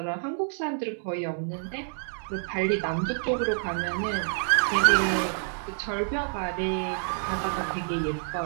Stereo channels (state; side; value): silent; left; 59 dB below the other